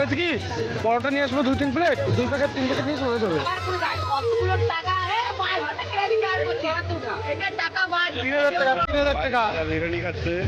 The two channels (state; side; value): identical; both; correlation 1.00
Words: কি, পরোটা নিয়ে আসবো 2-3 প্লেট, 2 প্যাকেট 3 প্যাকেট নিয়ে চলে যাবে। 3,000 টাকা। 3,000 টাকা বিরিয়ানি খাচ্ছে,